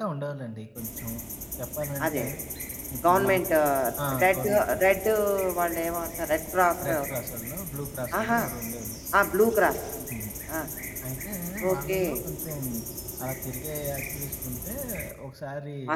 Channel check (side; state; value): both; identical; correlation 1.00